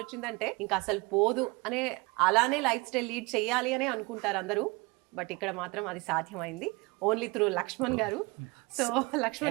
వచ్చిందంటే ఇంకా అసలు పోదు అనే అలానే లైఫ్ స్టైల్ లీడ్ చేయాలి అనే అనుకుంటారు అందరూ. బట్ ఇక్కడ మాత్రం అది సాధ్యమైంది ఓన్లీ త్రూ లక్ష్మణ్ గారు. సో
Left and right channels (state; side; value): quieter; left; 25.5 dB